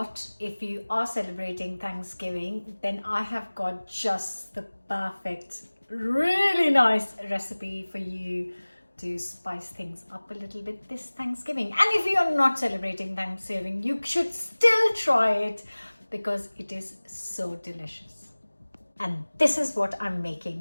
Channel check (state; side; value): inverted; both; correlation -1.00